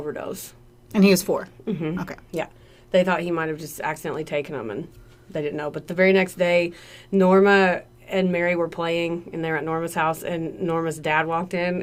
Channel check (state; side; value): identical; both; correlation 1.00